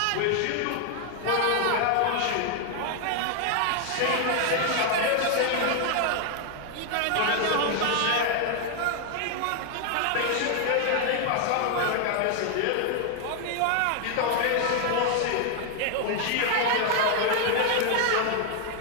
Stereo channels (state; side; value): different; both; correlation 0.00